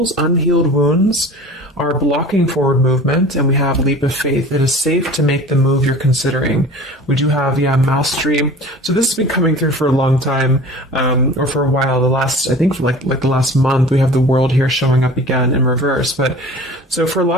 unhealed wounds are blocking forward movement, and we have leap of faith. It is safe to make the move you're considering. We do have, mastery. So this has been coming through for a long time, or for a while. I think for like the last month, we have the world here showing up again in reverse. But so for a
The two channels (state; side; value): normal; both; correlation 0.41